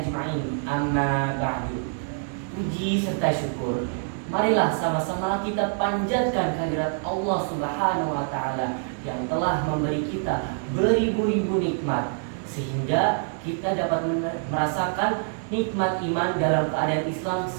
Amma ba'du. Puji serta syukur, marilah sama-sama kita panjatkan kehadirat Allah Subhanahu wa Ta'ala yang telah memberi kita beribu-ribu nikmat, sehingga kita dapat merasakan nikmat iman dalam keadaan Islam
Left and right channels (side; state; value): left; silent; 61 dB below the other